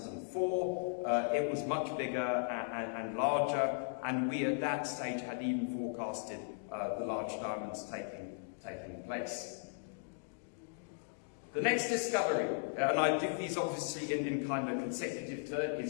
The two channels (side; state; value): right; silent; digital silence